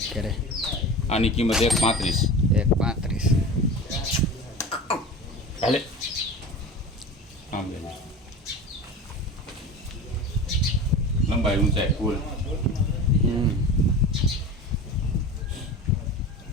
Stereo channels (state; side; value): normal; both; correlation 0.33